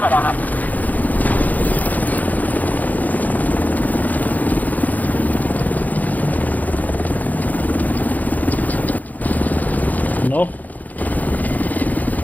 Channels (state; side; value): late; right; 0.080 ms